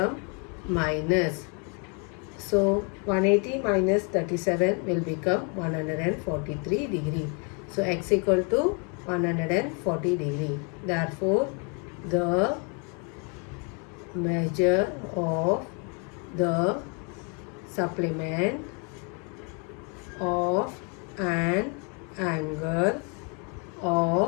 minus. So 180 minus 37 will become 143 degree. So x equal to 140 degree. Therefore the measure of the supplement of an angle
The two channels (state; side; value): quieter; right; 36.0 dB